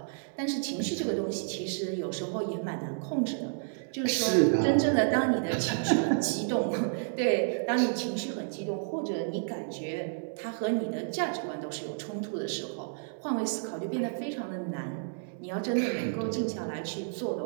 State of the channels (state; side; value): silent; left; 57 dB below the other